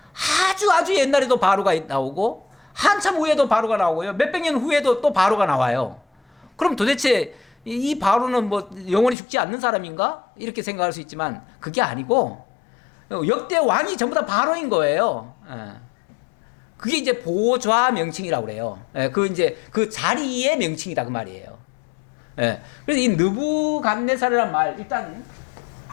아주 옛날에도 바로가 나오고 한참 후에도 바로가 나오고요, 몇백 년 후에도 또 바로가 나와요. 그럼 도대체 이 바로는 뭐 영원히 죽지 않는 사람인가? 이렇게 생각할 수 있지만 그게 아니고 역대 왕이 전부 다 바로인 거예요. 그게 이제 보좌 명칭이라고 그래요. 그 자리의 명칭이다 그 말이에요. 그래서 이 느부갓네살이란 말, 일단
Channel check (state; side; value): drops out; right; at 9.2 s